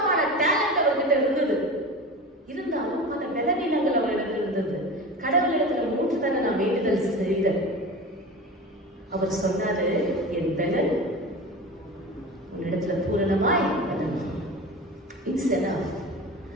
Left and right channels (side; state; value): both; normal; correlation 0.31